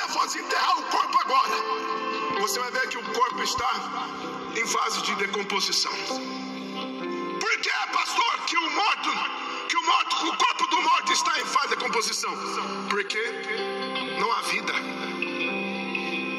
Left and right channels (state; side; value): identical; both; correlation 1.00